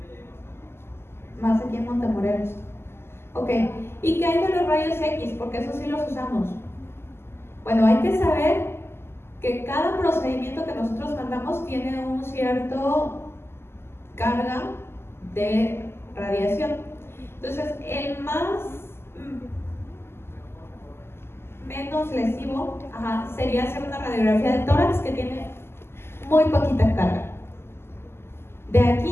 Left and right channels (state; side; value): late; right; 0.12 ms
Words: más aquí en Montemorelos. Ok, ¿y qué hay de los rayos X? Porque eso sí los usamos. Bueno, hay que saber que cada procedimiento que nosotros mandamos tiene un cierto carga de radiación. Entonces, el menos lesivo sería hacer una radiografía de tórax que tiene muy poquita carga. De